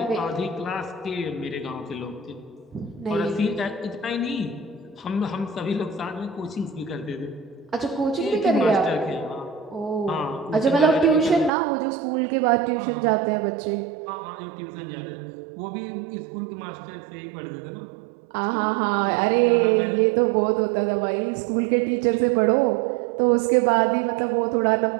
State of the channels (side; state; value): left; drops out; at 11.5 s